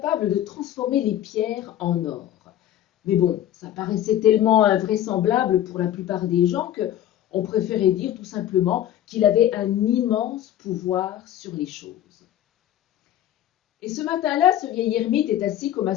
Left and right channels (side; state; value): right; quieter; 11.7 dB